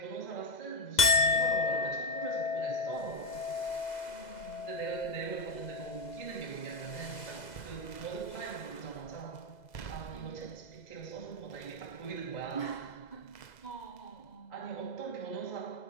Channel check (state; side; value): late; right; 2.0 ms